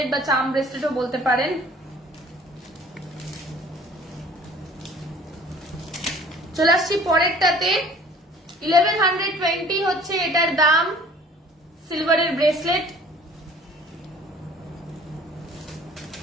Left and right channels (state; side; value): normal; both; correlation 0.51